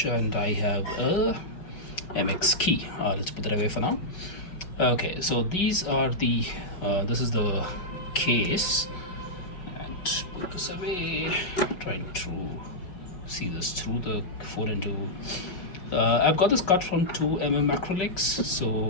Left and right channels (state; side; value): late; right; 5.3 ms